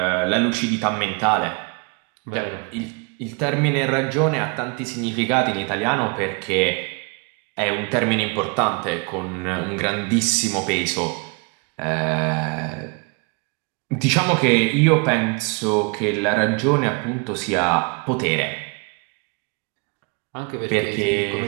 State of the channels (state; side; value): quieter; left; 33.2 dB